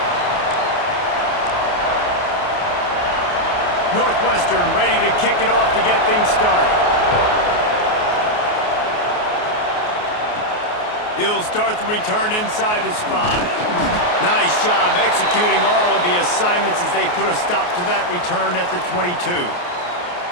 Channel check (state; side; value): late; right; 28 ms